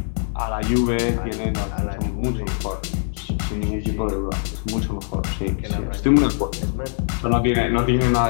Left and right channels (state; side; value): silent; right; digital silence